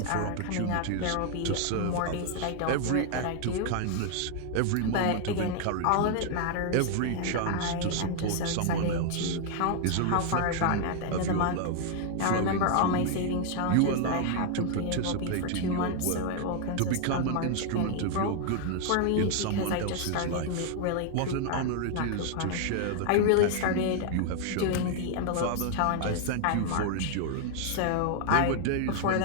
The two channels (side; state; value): both; different; correlation 0.00